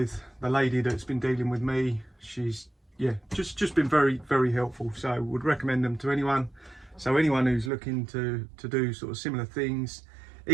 the lady that's been dealing with me, she's, yeah, just been very, very helpful. So would recommend them to anyone. So anyone who's looking to do sort of similar things,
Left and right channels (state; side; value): drops out; left; at 7.7 s